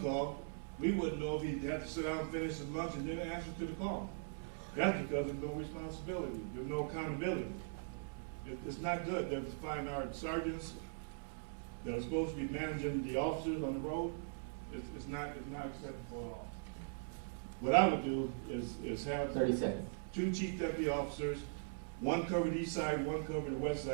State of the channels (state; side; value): silent; left; 51 dB below the other